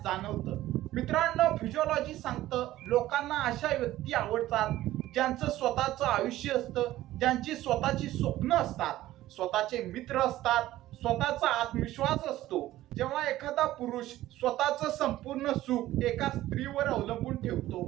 जाणवतं. मित्रांनो, फिजिओलॉजी सांगतं लोकांना अशा व्यक्ती आवडतात ज्यांचं स्वतःचं आयुष्य असतं, ज्यांची स्वतःची स्वप्न असतात, स्वतःचे मित्र असतात, स्वतःचा आत्मविश्वास असतो. जेव्हा एखादा पुरुष स्वतःचं संपूर्ण सुख एका स्त्रीवर अवलंबून ठेवतो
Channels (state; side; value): quieter; left; 15.2 dB